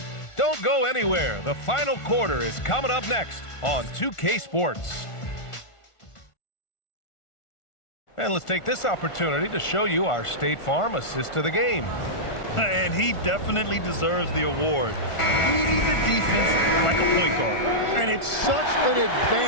Don't go anywhere. The final quarter is coming up next on 2K Sports. And let's take this opportunity to show you our State Farm assist of the game. And he definitely deserves the award. Reading the defense like a point guard. And it's such an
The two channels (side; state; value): right; late; 1.4 ms